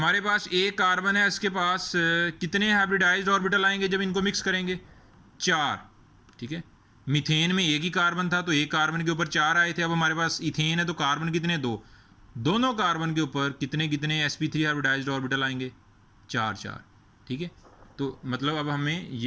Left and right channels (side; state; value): both; identical; correlation 1.00